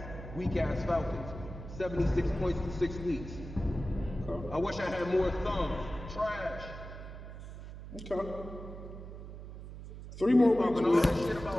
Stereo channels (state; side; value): noise; right; hum, 12 dB below the sound